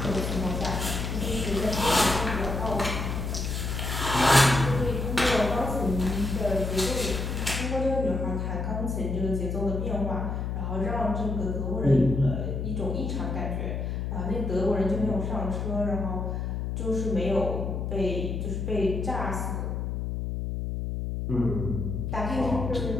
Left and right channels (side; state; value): left; noise; hum, 2 dB below the sound